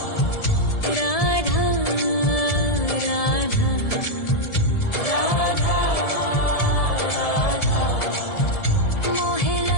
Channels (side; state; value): right; late; 1.7 ms